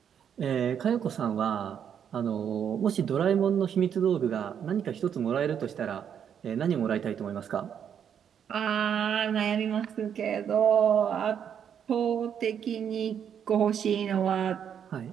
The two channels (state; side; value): quieter; left; 8.4 dB